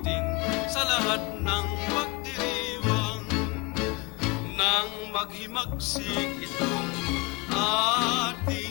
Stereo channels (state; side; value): quieter; right; 27.4 dB